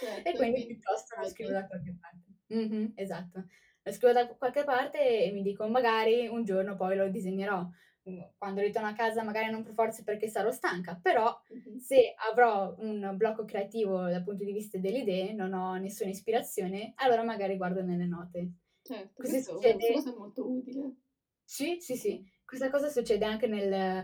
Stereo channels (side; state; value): both; identical; correlation 1.00